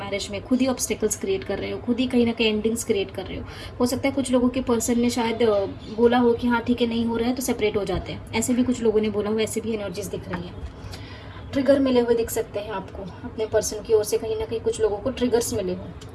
में, खुद ही ऑब्स्टेकल्स क्रिएट कर रहे हो, खुद ही कहीं ना कहीं एंडिंग्स क्रिएट कर रहे हो सकता है कुछ लोगों के पर्सन ने शायद बोला हो कि हाँ ठीक है नहीं हो रहा है तो सेपरेट हो जाते हैं। ऐसे भी कुछ लोगों ने बोला हो, ऐसे भी एनर्जीज दिख रही है। ट्रिगर मिले हुए दिख सकते हैं आपको अपने पर्सन की ओर से, कहीं ना कहीं कुछ लोगों को ट्रिगर्स मिले हो।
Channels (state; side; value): identical; both; correlation 1.00